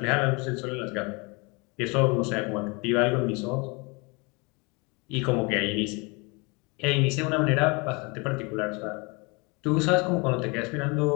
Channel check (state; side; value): quieter; right; 29.1 dB